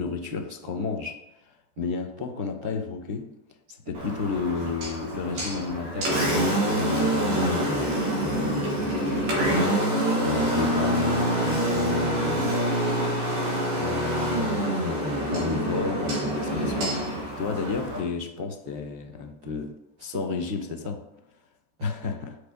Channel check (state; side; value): late; left; 14 ms